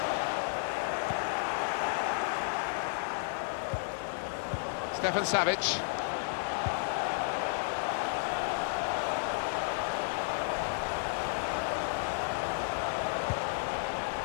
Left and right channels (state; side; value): silent; right; digital silence